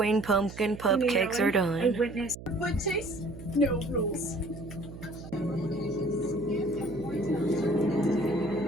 pumpkin cupcakes are done. A witness. Foot chase? No rules.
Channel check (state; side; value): noise; right; hum, 14 dB below the sound